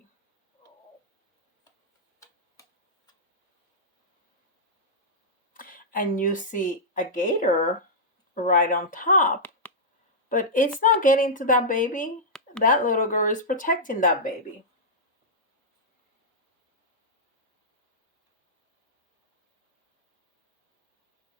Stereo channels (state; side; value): normal; both; correlation -0.10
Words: And you see a gator right on top, but it's not getting to that baby. That little girl is protecting that baby.